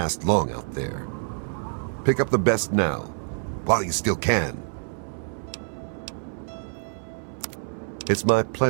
long out there. Pick up the best now, while you still can. It's my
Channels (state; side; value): silent; left; 61 dB below the other